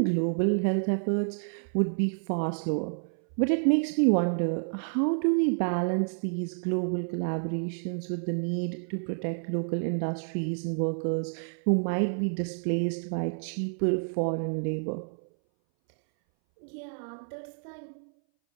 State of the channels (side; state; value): left; silent; 59 dB below the other